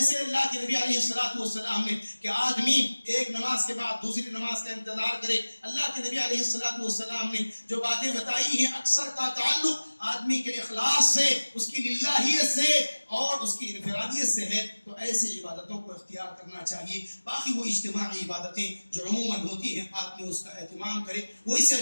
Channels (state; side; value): inverted; both; correlation -1.00